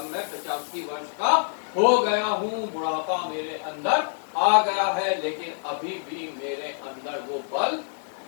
मैं 85 वर्ष का हो गया हूँ, बुढ़ापा मेरे अंदर आ गया है, लेकिन अभी भी मेरे अंदर वो बल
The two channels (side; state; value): right; silent; digital silence